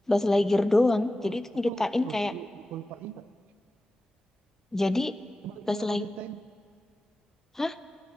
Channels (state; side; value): normal; both; correlation 0.95